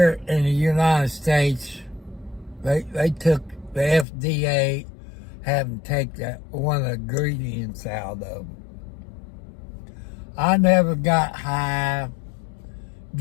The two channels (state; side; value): drops out; right; at 4.0 s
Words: in the United States, they took the FDA, having take that one of the ingredients out of them. I never got high,